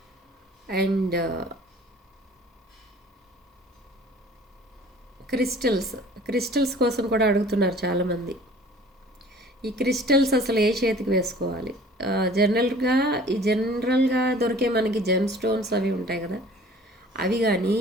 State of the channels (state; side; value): normal; both; correlation 0.49